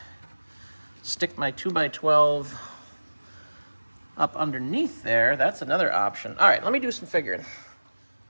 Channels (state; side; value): inverted; both; correlation -1.00